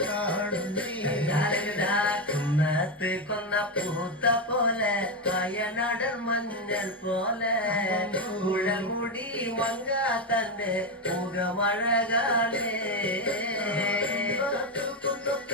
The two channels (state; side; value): normal; both; correlation 0.10